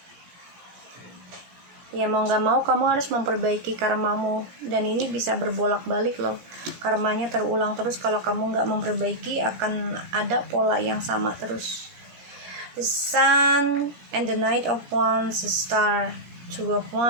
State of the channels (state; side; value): late; left; 17 ms